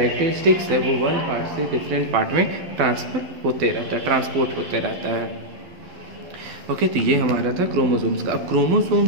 है वो वन पार्ट से डिफरेंट पार्ट में ट्रांसपोर्ट होते रहता है। ओके, तो ये हमारा था क्रोमोसोम्स का। अब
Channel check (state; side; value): late; left; 11 ms